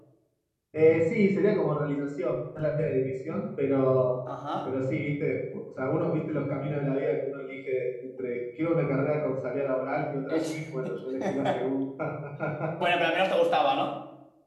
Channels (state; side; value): identical; both; correlation 1.00